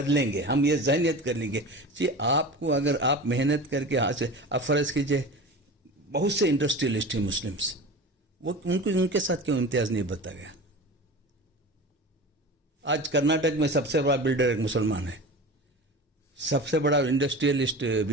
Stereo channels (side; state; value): both; normal; correlation 0.33